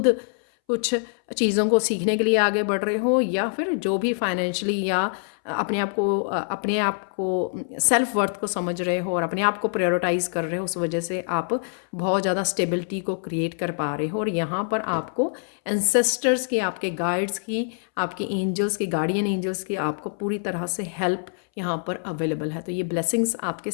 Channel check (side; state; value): right; silent; 62 dB below the other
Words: कुछ चीज़ों को सीखने के लिए आगे बढ़ रहे हो या फिर जो भी फाइनेंशियली या अपने आप को सेल्फ वर्थ को समझ रहे हो और अपने आप को प्रायोरिटाइज कर रहे हो, उस वजह से आप बहुत ज़्यादा स्टेबिलिटी को क्रिएट कर पा रहे हो। और यहाँ पर आपको एंसेस्टर्स की, आपके गाइड्स की, आपके एंजल्स की, गार्डियन एंजल्स की आपको पूरी तरह से हेल्प यहाँ पर अवेलेबल है। तो ये ब्लेसिंग्स आपके